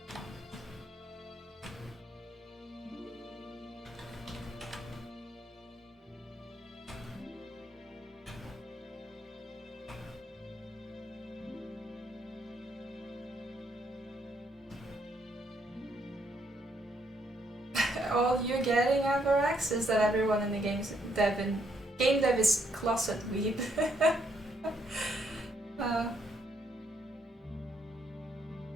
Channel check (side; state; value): both; normal; correlation 0.73